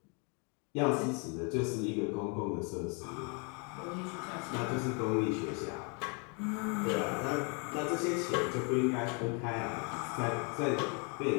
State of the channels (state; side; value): quieter; right; 35.0 dB